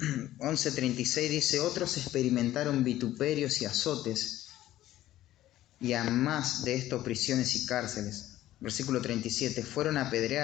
dice: otros experimentaron vituperios y azotes, y a más de esto prisiones y cárceles. Versículo 37, fueron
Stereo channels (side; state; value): right; quieter; 14.2 dB